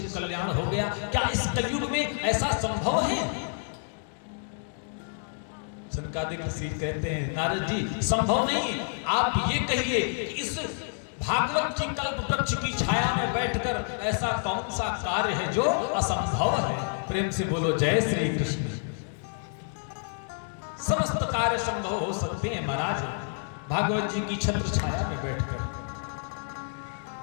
कल्याण हो गया, क्या इस कलयुग में ऐसा संभव है? सनकादिक ऋषि कहते हैं, नारद जी संभव नहीं, आप ये कहिए कि इस भागवत जी कल्प वृक्ष की छाया में बैठकर ऐसा कौन सा कार्य है जो असंभव है? प्रेम से बोलो जय श्री कृष्ण। समस्त कार्य संभव हो सकते हैं महाराज, भागवत जी की छत्र छाया में बैठकर।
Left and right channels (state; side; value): silent; right; digital silence